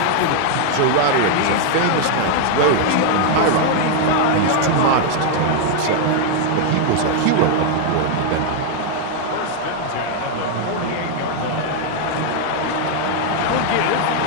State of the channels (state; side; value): different; both; correlation 0.00